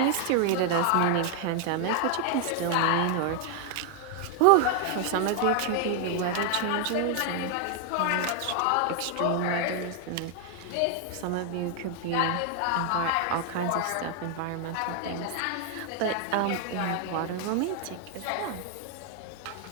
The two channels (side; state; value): both; different; correlation 0.00